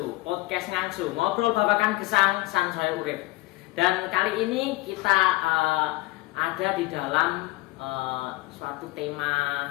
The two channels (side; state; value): right; quieter; 20.9 dB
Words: podcast ngangsu, ngobrol babakan gesang sansaya urip. Dan kali ini kita ada di dalam suatu